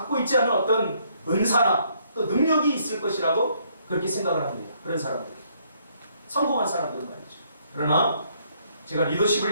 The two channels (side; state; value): both; inverted; correlation -0.69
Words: 있지 않은 어떤 은사나 또 능력이 있을 것이라고 그렇게 생각을 합니다. 그런 사람들, 성공한 사람들은 말이죠. 그러나 제가 리더십을